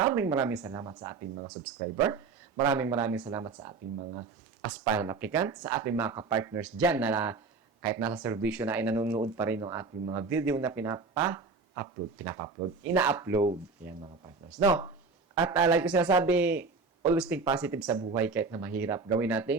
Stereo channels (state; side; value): quieter; left; 4.4 dB